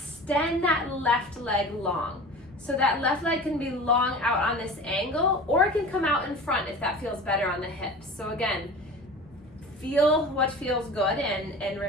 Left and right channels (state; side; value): normal; both; correlation 0.37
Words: that left leg long. So that left leg can be long out on this angle, or it can come out in front if that feels better on the hips. So again, feel what feels good and